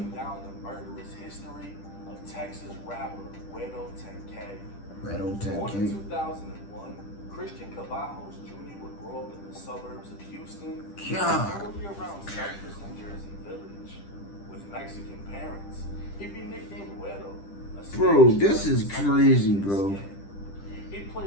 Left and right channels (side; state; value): right; late; 10 ms